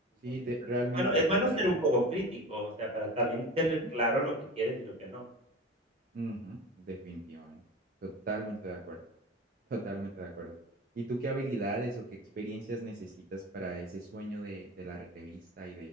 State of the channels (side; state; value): both; normal; correlation 0.32